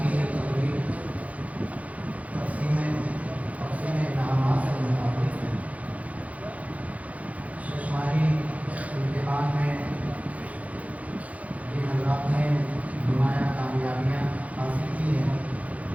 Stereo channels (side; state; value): left; late; 0.068 ms